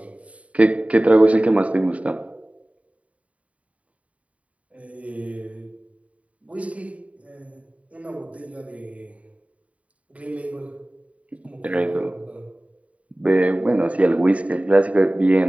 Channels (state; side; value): late; left; 0.067 ms